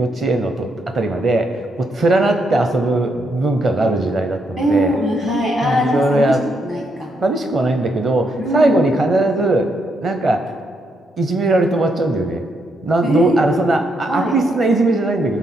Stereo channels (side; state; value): both; normal; correlation 0.78